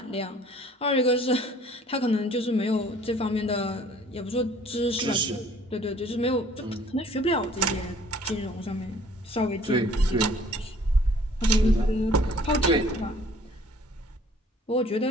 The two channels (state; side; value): normal; both; correlation 0.54